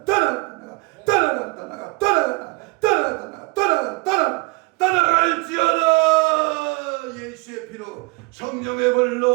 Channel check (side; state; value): left; quieter; 26.8 dB